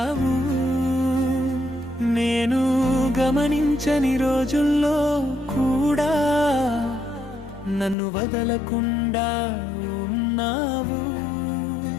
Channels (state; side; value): drops out; right; at 8.0 s